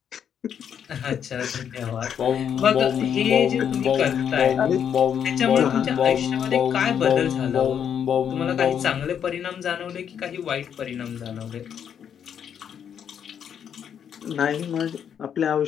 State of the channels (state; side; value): quieter; right; 8.4 dB